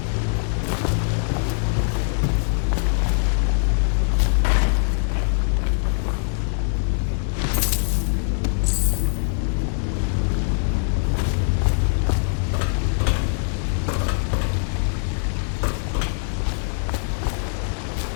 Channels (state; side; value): silent; right; 60 dB below the other